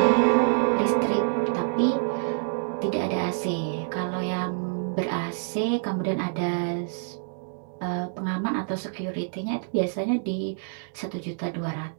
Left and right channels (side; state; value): left; silent; digital silence